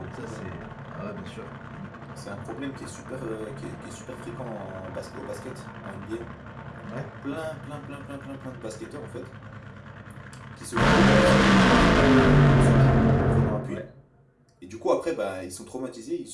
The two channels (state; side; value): identical; both; correlation 1.00